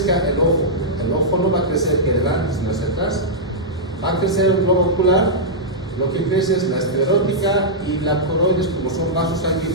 el ojo? El ojo no va a crecer hacia adelante, sino hacia atrás. Va a crecer el globo ocular. Lo que crece es la esclerótica y la coroides, como son vasos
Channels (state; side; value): normal; both; correlation -0.10